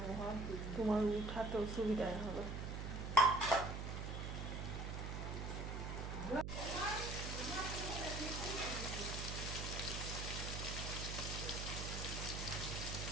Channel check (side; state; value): right; noise; hum, 4 dB below the sound